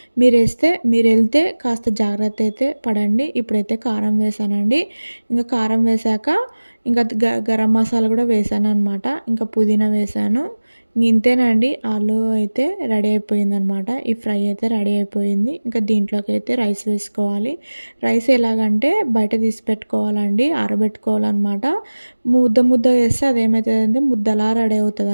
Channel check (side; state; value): both; inverted; correlation -1.00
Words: మీరెళ్తే కాస్త జాగ్రత్త అయితే పడండి. ఇప్పుడైతే కారం వేశానండి. ఇంకా కారం వేశాక ఇంకా గరం మసాలా కూడా వేశాననమాట. ఇంకా పుదీనా వేశాను. ఇంతేనండి, ఆలు అయితే రెడీ అయిపోయిందనమాట. ఈ ఫ్రై అయితే రెడీ అయిపోయింది. ఇంకా దీంట్లోకైతే రైస్ వేసుకోవాలి. రైస్ ఎలాగంటే బయట తీసి పెట్టుకోవాలండి, ఆరబెట్టుకోవాలన్నమాట. ముద్ద వేస్తే అదేమవుతుందంటే ముద్దలా రెడీ